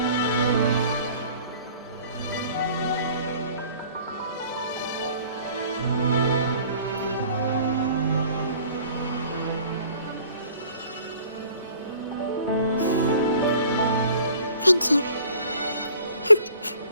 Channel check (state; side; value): inverted; both; correlation -0.51